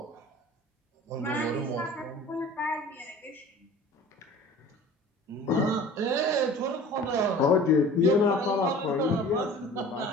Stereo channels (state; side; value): normal; both; correlation 0.44